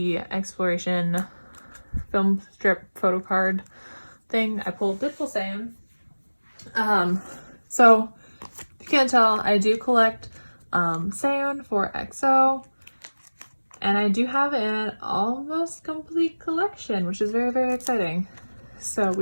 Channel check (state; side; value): inverted; both; correlation -1.00